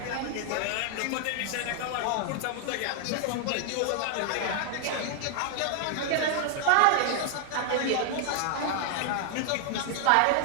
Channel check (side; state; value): both; different; correlation 0.00